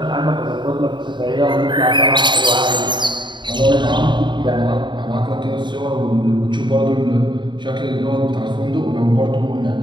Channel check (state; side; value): late; left; 0.22 ms